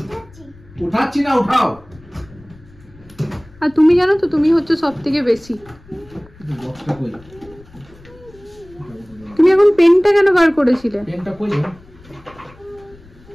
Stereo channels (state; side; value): noise; left; rumble, 24 dB below the sound